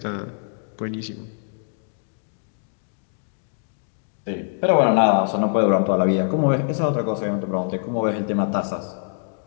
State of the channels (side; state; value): right; silent; digital silence